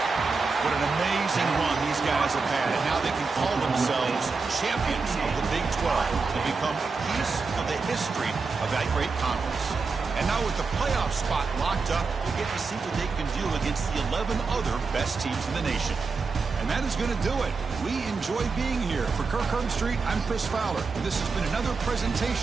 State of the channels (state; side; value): quieter; left; 4.5 dB